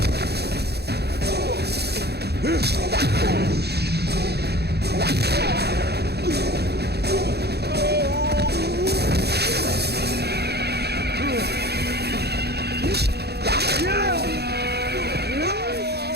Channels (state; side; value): late; left; 0.48 ms